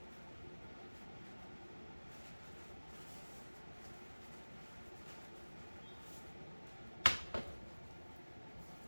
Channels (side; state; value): both; inverted; correlation -1.00